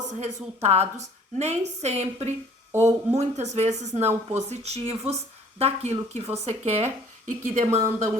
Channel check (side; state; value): both; normal; correlation 0.54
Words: resultados, nem sempre ou muitas vezes não positivos, daquilo que você quer e que demanda